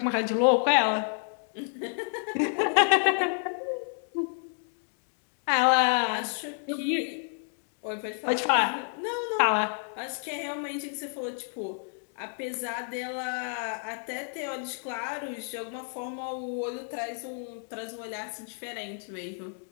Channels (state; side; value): silent; right; 57 dB below the other